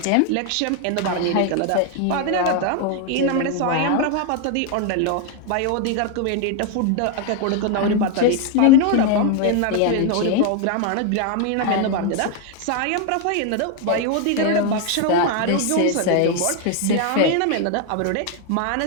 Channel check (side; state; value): both; different; correlation 0.00